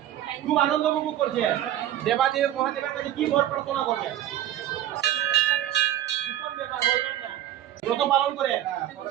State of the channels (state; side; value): quieter; left; 12.4 dB